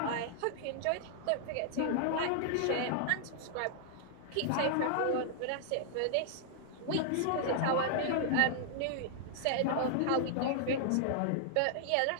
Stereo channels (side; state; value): both; different; correlation -0.01